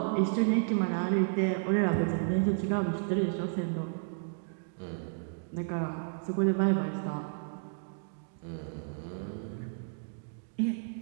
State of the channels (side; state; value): left; silent; digital silence